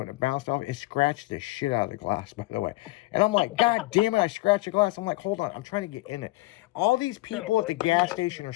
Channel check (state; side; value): quieter; right; 20.8 dB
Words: and it bounced off. It scratched the shit out of the glass, by the way. And I'm like, God damn it, I scratched the glass. I'm like, hold on, I'm trying to get in it. All these people at the gas station are